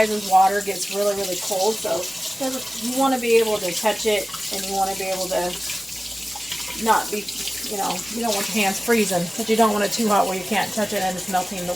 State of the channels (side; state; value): both; normal; correlation 0.97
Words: water gets really cold, so you want to be able to touch it, and you want to be able to not be, you don't want your hands freezing, but you don't want it too hot where you can't touch it and it's melting the